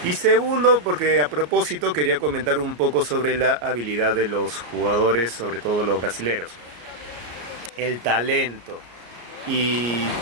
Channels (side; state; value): left; late; 34 ms